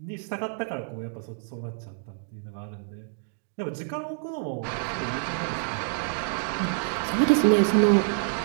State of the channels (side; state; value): left; silent; 60 dB below the other